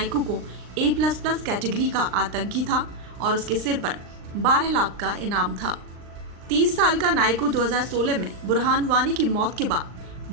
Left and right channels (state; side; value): late; left; 39 ms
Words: को A++ कैटेगरी का आतंकी था और उसके सिर पर 12 लाख का इनाम था। 30 साल का नायकू 2016 में बुरहान वानी की मौत के बाद